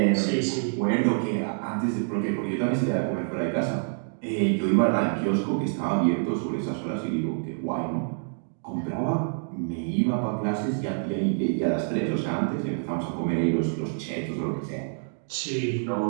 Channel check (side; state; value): left; silent; digital silence